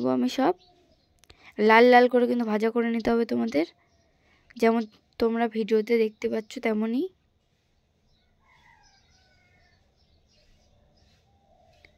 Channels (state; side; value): identical; both; correlation 1.00